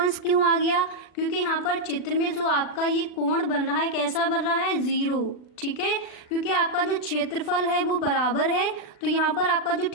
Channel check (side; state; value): right; late; 40 ms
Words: क्यों आ गया, क्योंकि यहाँ पर चित्र में जो आपका ये कोण बन रहा है कैसा बन रहा है, 0। ठीक है, क्योंकि आपका जो क्षेत्रफल है वो बराबर है, तो यहाँ पर आपका जो